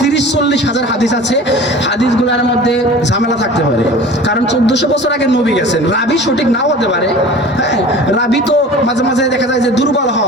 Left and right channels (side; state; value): both; normal; correlation 0.40